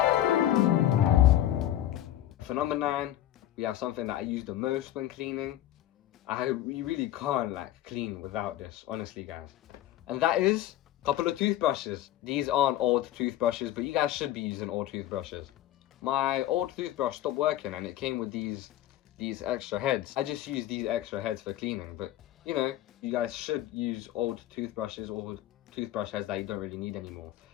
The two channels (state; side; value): quieter; right; 13.2 dB